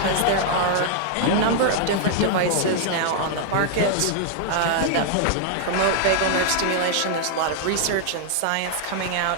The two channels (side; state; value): both; different; correlation -0.01